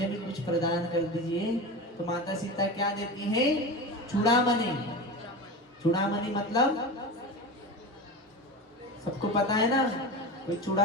भी कुछ प्रदान कर दीजिए, तो माता सीता क्या देती है? चूड़ामणि। चूड़ामणि मतलब सबको पता है ना, कोई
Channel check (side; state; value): both; normal; correlation 0.25